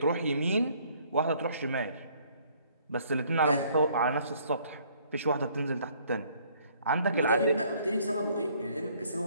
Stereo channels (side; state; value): both; inverted; correlation -0.62